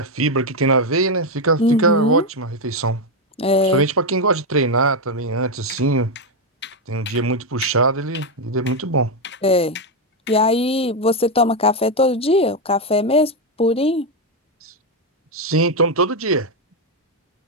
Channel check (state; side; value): normal; both; correlation 0.05